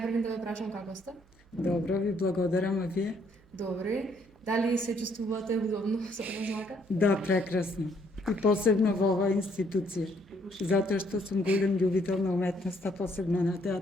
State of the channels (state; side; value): noise; right; hum, 29 dB below the sound